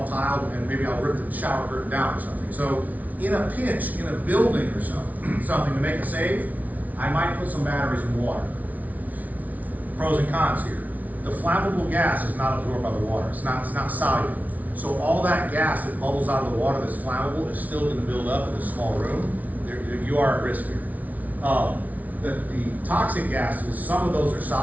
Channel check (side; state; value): left; late; 0.074 ms